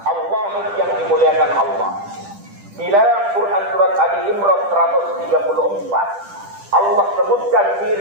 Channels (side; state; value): left; late; 10 ms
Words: Allah yang dimuliakan Allah. Di dalam Quran surat Ali Imran 134, Allah sebutkan